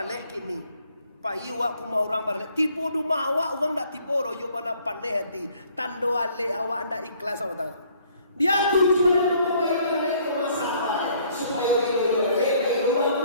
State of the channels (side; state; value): both; inverted; correlation -0.61